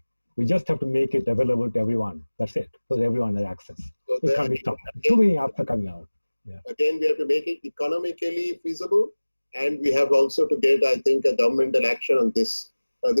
We just have to make it available to everyone. That's it. So that everyone has access. So it can't be stopped. Too many apps are coming out. Yeah. Again, we have to make it economically feasible. And we have also to get, I think, a governmental action on this.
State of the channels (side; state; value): both; inverted; correlation -1.00